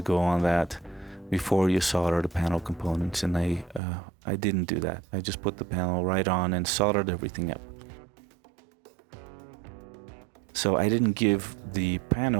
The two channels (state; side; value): drops out; left; at 3.8 s